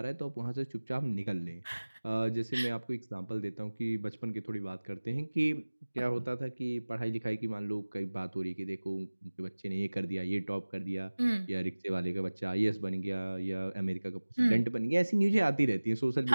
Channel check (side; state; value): both; inverted; correlation -1.00